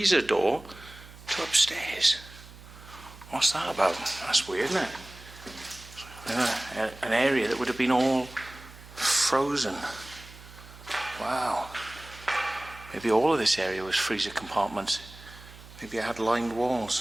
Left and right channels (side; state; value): right; noise; hum, 18 dB below the sound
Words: door to upstairs. What's that about? That's weird, isn't it? An area that would have been all frozen. Wow. Maybe all of this area was freezer compartments. Maybe it had lined